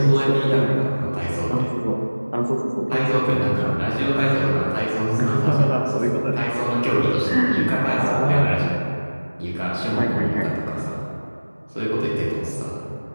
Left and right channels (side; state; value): both; inverted; correlation -1.00